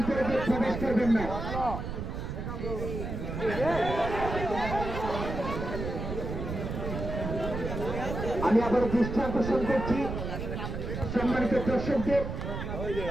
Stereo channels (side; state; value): right; noise; rumble, 5 dB below the sound